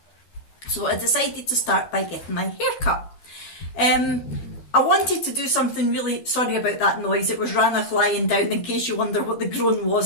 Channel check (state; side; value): late; right; 12 ms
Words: So I decided to start by getting my hair cut. I wanted to do something really, sorry about that noise, it was Ranach lying down, in case you wonder what the groan was,